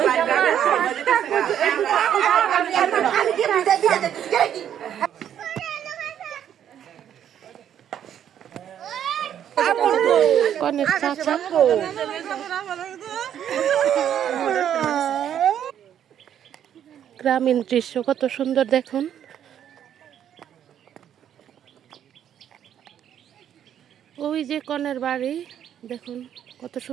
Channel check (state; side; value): quieter; left; 9.8 dB